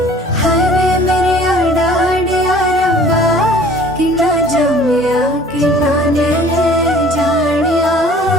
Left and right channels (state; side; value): normal; both; correlation 0.51